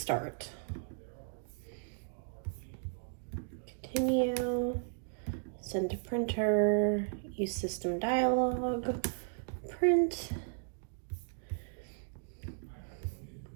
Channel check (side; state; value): left; silent; digital silence